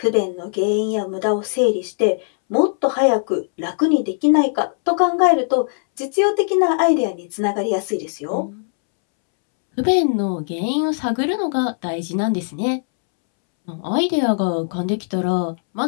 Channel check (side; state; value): right; silent; 66 dB below the other